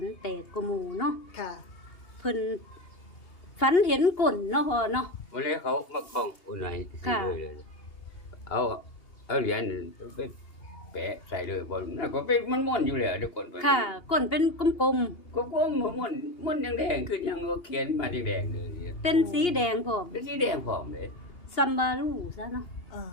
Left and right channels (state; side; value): late; right; 2.8 ms